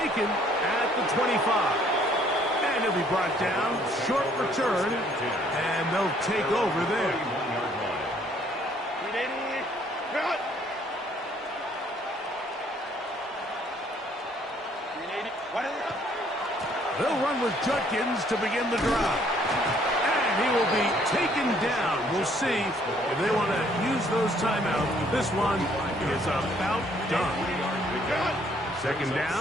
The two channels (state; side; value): normal; both; correlation 0.63